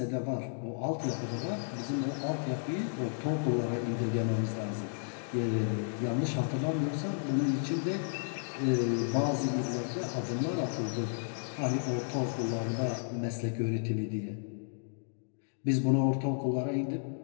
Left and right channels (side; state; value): right; silent; digital silence